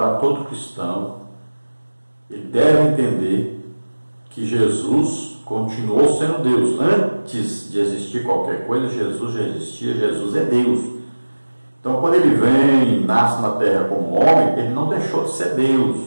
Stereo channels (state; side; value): inverted; both; correlation -1.00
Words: todo cristão. Ele deve entender que Jesus continuou sendo Deus. Antes de existir qualquer coisa, Jesus já existia, Jesus é Deus. Então quando ele vem e nasce na terra como homem, ele não deixou de ser Deus.